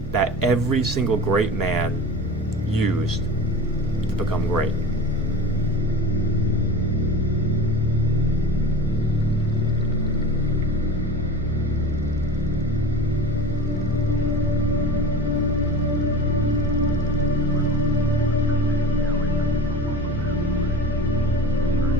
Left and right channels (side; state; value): both; normal; correlation 0.34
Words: that every single great man used to become great.